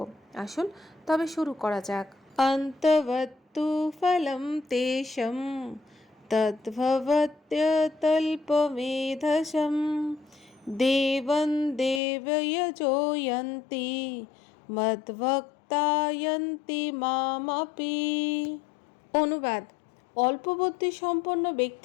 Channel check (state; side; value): drops out; right; at 12.0 s